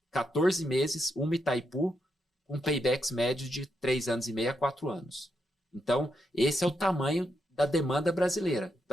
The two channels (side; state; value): both; normal; correlation 0.82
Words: 14 meses uma Itaipu com paybacks médios de 3 anos e meio a 4 anos. Então, esse é o tamanho da demanda brasileira.